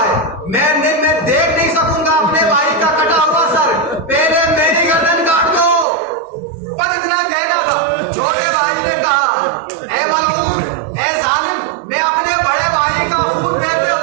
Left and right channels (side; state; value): left; drops out; at 5.9 s